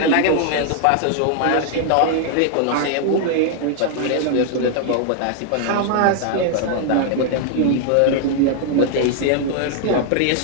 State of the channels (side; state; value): both; different; correlation 0.00